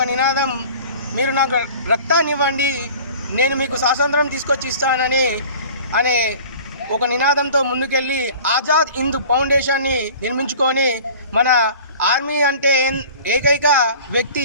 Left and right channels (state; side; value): inverted; both; correlation -0.44